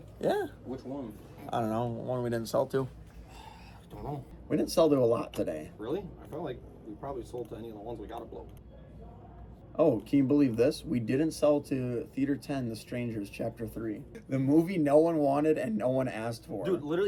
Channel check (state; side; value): identical; both; correlation 1.00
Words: Yeah. Which one? I don't know. One we didn't sell to. I don't know. We didn't sell to a lot today. Really? I felt like we probably sold to any of the ones we got to blow. Oh, can you believe this? We didn't sell to Theater 10, The Strangers, Chapter 3. The movie no one wanted and no one asked for. Dude,